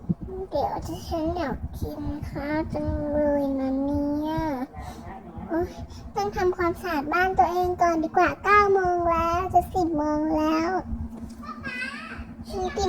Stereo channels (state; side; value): identical; both; correlation 1.00